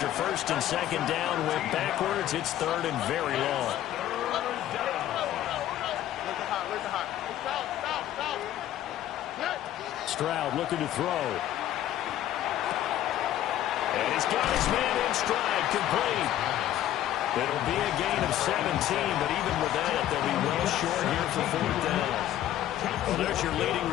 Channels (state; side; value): quieter; right; 12.5 dB